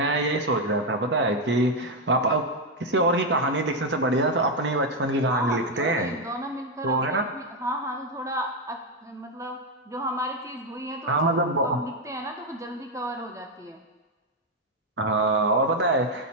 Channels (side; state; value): both; normal; correlation 0.04